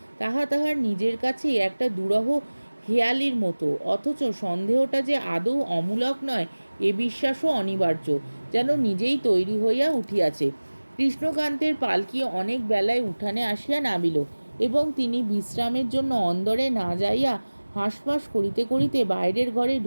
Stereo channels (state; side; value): inverted; both; correlation -1.00